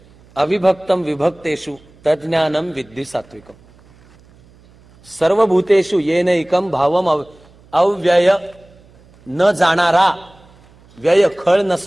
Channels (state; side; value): noise; right; hum, 28 dB below the sound